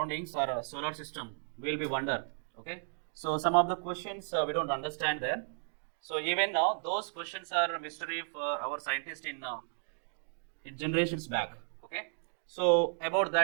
our solar system. We will be wonder. Okay, so some of the questions we don't understand there. So even now those questions are a mystery for our scientists in generations back. Okay, so about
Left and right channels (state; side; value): silent; left; digital silence